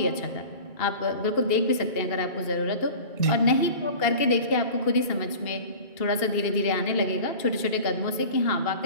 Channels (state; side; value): late; right; 2.8 ms